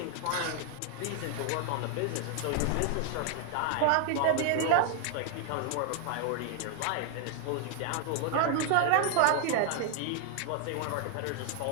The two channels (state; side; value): different; both; correlation 0.00